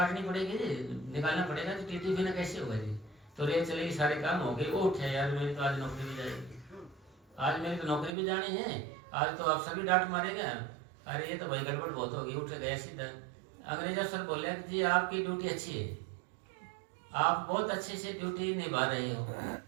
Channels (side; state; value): left; drops out; at 8.1 s